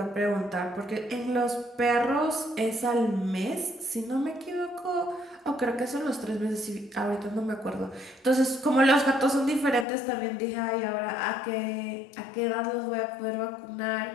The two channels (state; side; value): drops out; right; at 9.9 s